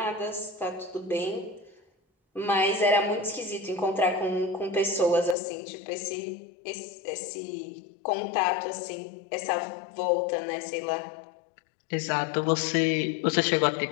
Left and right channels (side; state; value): right; drops out; at 5.4 s